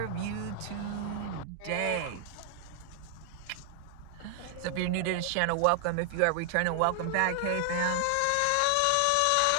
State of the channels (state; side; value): different; both; correlation 0.00